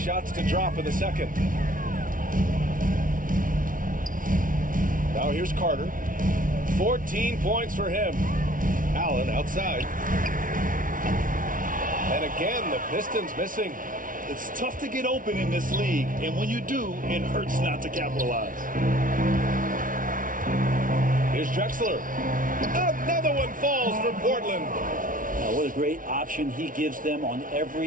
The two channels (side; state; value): left; late; 0.39 ms